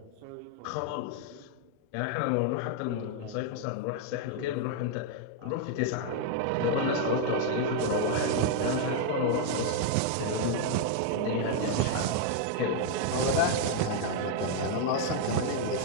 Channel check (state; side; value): different; both; correlation 0.00